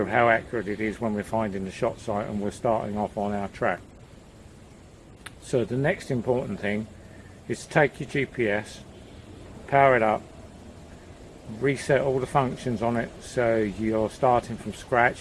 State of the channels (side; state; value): both; identical; correlation 1.00